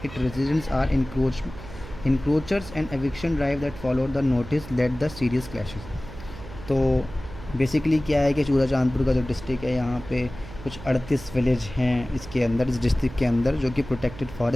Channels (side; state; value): right; noise; hum, 14 dB below the sound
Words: it residents are encroachers and eviction drive that followed the notice led the serious clashes। तो basically क्या है कि चूराचांदपुर का जो district है यहाँ पे कुछ 38 विलेज हैं इसके अंदर, इस डिस्ट्रिक्ट के अंदर, जो कि प्रोटेक्टेड